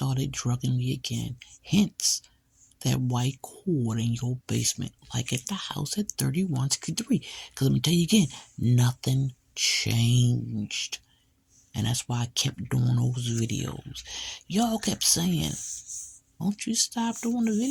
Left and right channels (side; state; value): both; identical; correlation 1.00